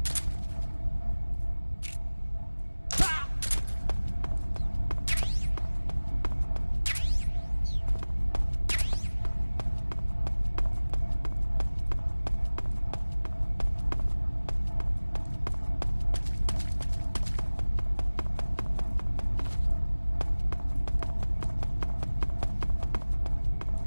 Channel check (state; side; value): inverted; both; correlation -1.00